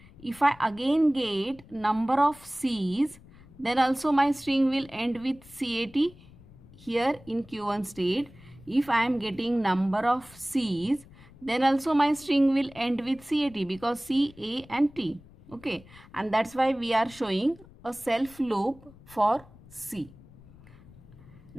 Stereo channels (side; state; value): left; noise; rumble, 22 dB below the sound